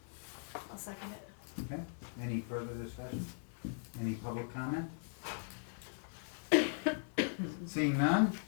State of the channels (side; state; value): right; silent; digital silence